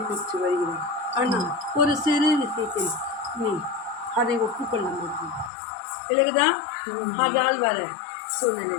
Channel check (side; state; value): right; drops out; at 5.5 s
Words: வருகிறாய் ஆனால் ஒரு சிறு விஷயத்தில் நீ அதை ஒப்புக்கொள்ள முடியும் விலகுதான் அதால் வர